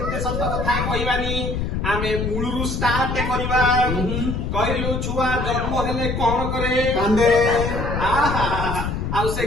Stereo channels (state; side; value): noise; left; rumble, 2 dB below the sound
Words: ଏତେ ସତ କଥା କହିବାନି ଆମେ ମୂଳରୁ ଷ୍ଟାର୍ଟ କରିବା କହିଲୁ ଛୁଆ ଜନ୍ମ ହେଲେ କଣ କରେ कांदे ଆଉ ସେ